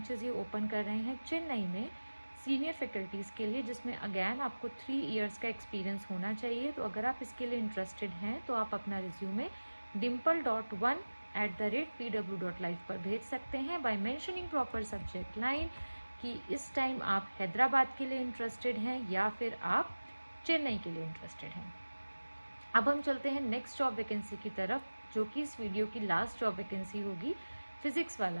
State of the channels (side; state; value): both; inverted; correlation -1.00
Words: ये ओपन कर रहे हैं चेन्नई में सीनियर फैकल्टीज़ के लिए, जिसमें अगैन आपको 3 इयर्स का एक्सपीरियंस होना चाहिए। तो अगर आप इसके लिए इंटरेस्टेड हैं तो आप अपना रिज्यूमे dimple.1@pw.live पर भेज सकते हैं by mentioning proper subject line कि इस टाइम आप हैदराबाद के लिए इंटरेस्टेड हैं या फिर आप चेन्नई के लिए इंटरेस्टेड हैं। अब हम चलते हैं नेक्स्ट जॉब वैकेंसी की तरफ, जो कि इस वीडियो की लास्ट जॉब वैकेंसी होगी फिज़िक्स